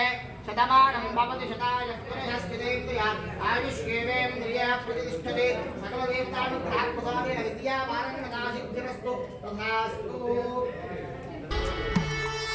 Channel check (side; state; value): both; identical; correlation 1.00